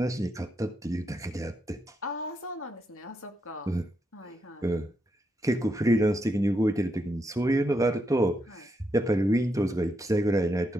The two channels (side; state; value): both; normal; correlation 0.81